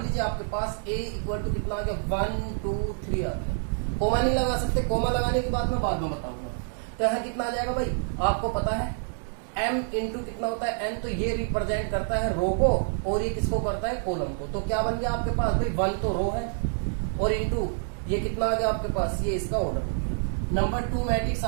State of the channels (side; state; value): left; silent; digital silence